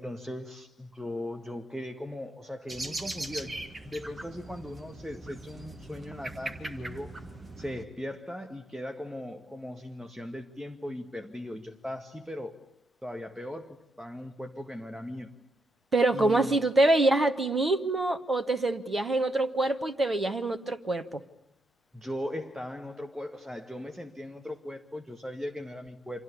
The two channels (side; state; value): both; normal; correlation 0.80